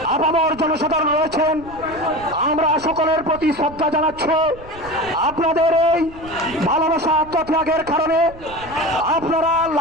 আপামর জনসাধারণ রয়েছেন। আমরা সকলের প্রতি শ্রদ্ধা জানাচ্ছি। আপনাদের এই ভালোবাসা আত্মত্যাগের কারণে আপনারা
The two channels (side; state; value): right; noise; rumble, 18 dB below the sound